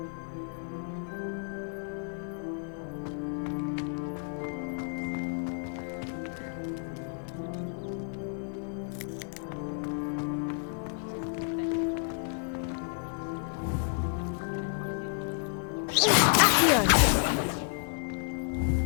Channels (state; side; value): silent; right; 57 dB below the other